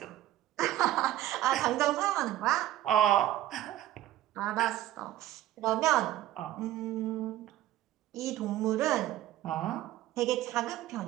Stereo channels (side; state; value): left; quieter; 13.8 dB